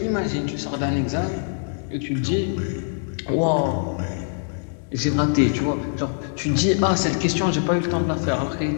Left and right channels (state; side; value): silent; right; digital silence